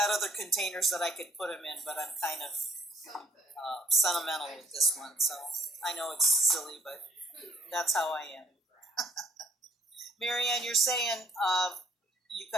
other containers that I could put them in, but I'm kind of sentimental with this one. So I know it's silly, but that's how I am. Marianne, you're saying you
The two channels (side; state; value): both; normal; correlation 0.65